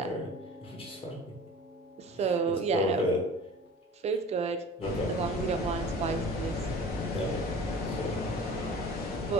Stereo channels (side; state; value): both; normal; correlation 0.42